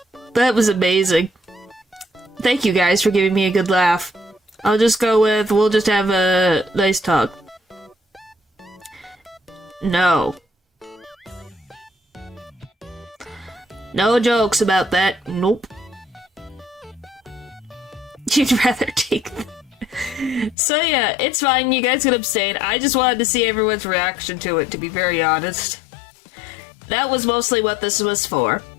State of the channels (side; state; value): right; drops out; at 20.6 s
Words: That was amazing. Thank you guys for giving me a good laugh. I'll just go with, we'll just have a nice talk. No. No jokes about that. Nope. You'd rather take them. So yeah, it's fine, you guys can abstain. I just wanted to see everyone's reaction to it, to be very honest. That was mostly what this was for.